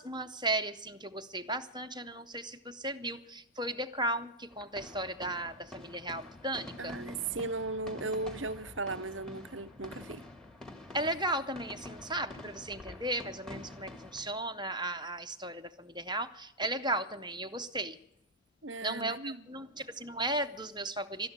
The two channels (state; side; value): normal; both; correlation -0.04